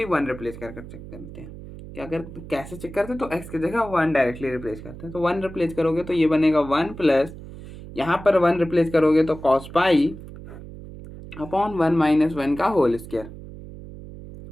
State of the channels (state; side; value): noise; right; hum, 14 dB below the sound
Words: 1 रिप्लेस कर चेक करते हैं। क्या कर कैसे चेक करते हैं, तो एक्स की जगह 1 डायरेक्टली रिप्लेस करते हैं। तो 1 रिप्लेस करोगे तो ये बनेगा 1 प्लस, यहाँ पर 1 रिप्लेस करोगे तो कॉस पाई अपॉन 1 माइनस 1 का होल स्क्वायर।